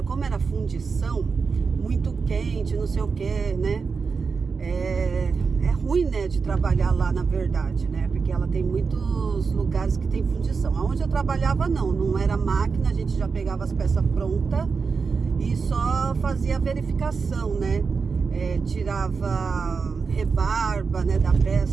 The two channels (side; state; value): left; quieter; 5.1 dB